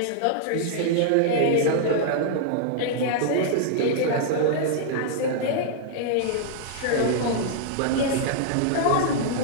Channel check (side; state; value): both; different; correlation -0.01